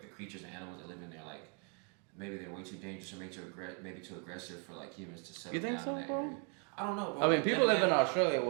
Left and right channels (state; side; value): quieter; left; 37.9 dB